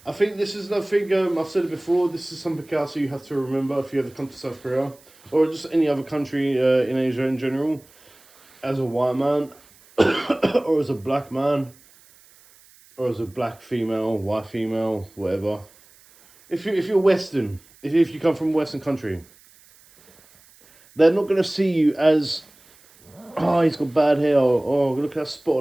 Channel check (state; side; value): noise; right; hiss, 28 dB below the sound